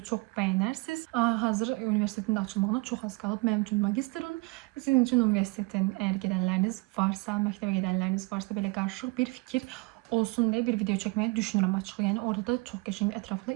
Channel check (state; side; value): quieter; left; 25.2 dB